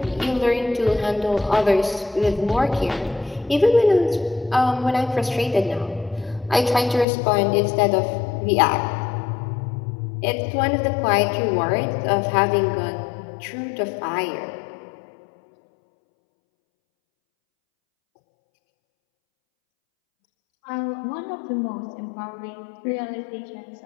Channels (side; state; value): right; drops out; at 7.1 s